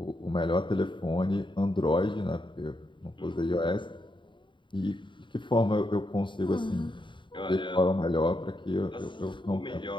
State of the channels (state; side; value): late; right; 0.23 ms